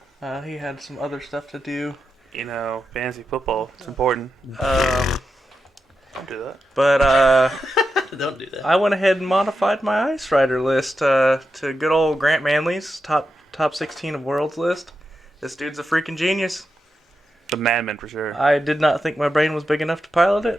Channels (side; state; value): both; normal; correlation 0.88